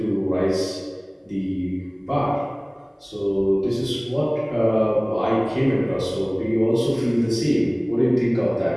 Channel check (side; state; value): both; identical; correlation 1.00